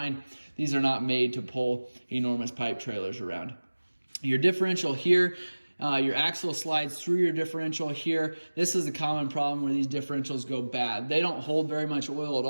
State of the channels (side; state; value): both; inverted; correlation -1.00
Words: These are not made to pull enormous pipe trailers around. Your differential here, your axle slides through your differential here. This is a common problem where these differentials go bad. They don't hold very much oil at